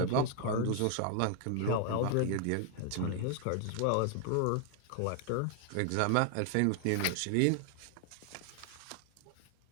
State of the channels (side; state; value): both; different; correlation 0.00